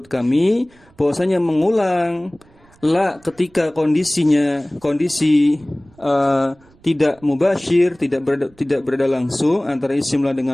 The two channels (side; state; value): right; noise; rumble, 30 dB below the sound